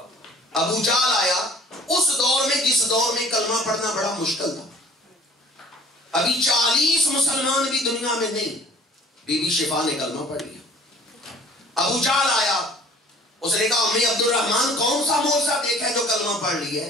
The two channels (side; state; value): both; normal; correlation 0.51